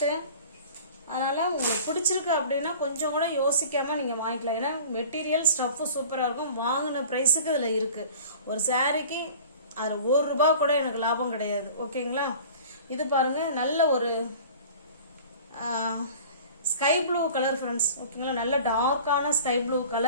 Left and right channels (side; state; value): both; inverted; correlation -0.43